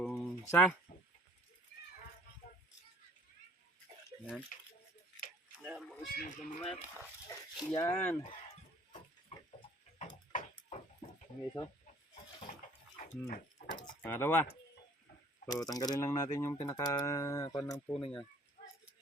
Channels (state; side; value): normal; both; correlation 0.54